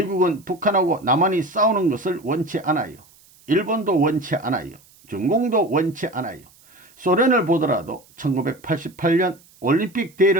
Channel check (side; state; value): right; noise; hiss, 28 dB below the sound